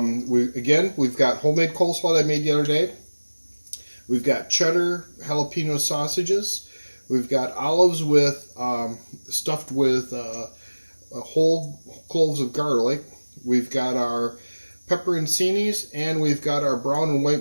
We've got homemade coleslaw that I made the other day. We've got cheddar jalapeno sausages. We've got olives with stuffed with whole cloves of garlic. We've got our pepperoncinis, and we've got our brown and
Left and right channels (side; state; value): both; inverted; correlation -1.00